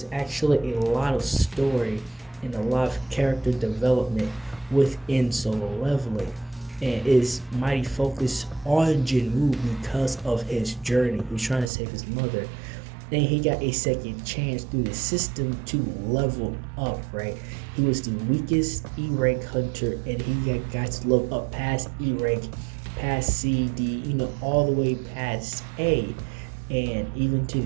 actually a lot of story and a lot of character development within Solo Leveling, and is mighty focused on Jinwoo because of his journey. He's trying to save his mother, and he got a second chance through the system to level up, right? He was the weakest E-rank hunter, and he got to level up past E-rank, past C, D, all the way past A, and even to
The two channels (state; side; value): drops out; left; at 11.7 s